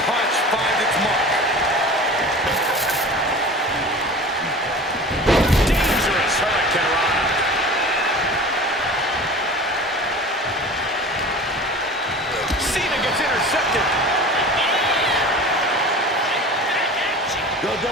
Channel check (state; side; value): normal; both; correlation 0.38